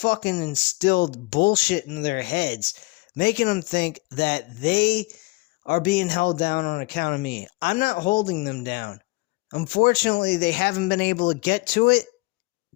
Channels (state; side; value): quieter; right; 24.0 dB